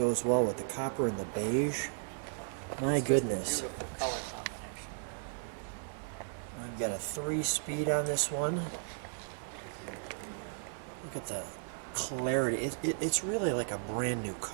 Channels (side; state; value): left; silent; digital silence